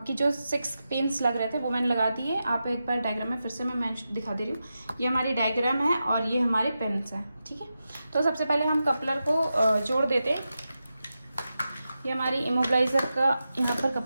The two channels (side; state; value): both; inverted; correlation -0.90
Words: जो 6 पिन्स लग रहे थे वो मैंने लगा दिए। आप एक बार डायग्राम में फिर से मैं दिखा दे रही हूँ। ये हमारी डायग्राम है और ये हमारे पिन्स हैं, ठीक है। तो सबसे पहले हम कपलर को जोड़ देते हैं। ये हमारी इमोबिलाइजर का यहाँ पर